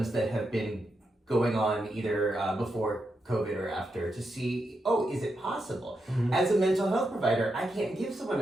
that have been going on either before COVID or after to see, oh, is it possible? Mm-hmm. As a mental health provider, I can't give someone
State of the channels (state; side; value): normal; both; correlation 0.85